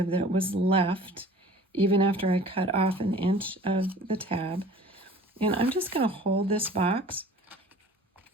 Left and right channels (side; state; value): both; normal; correlation 0.46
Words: that was left even after I cut off an inch of the tab. And I'm just going to hold this box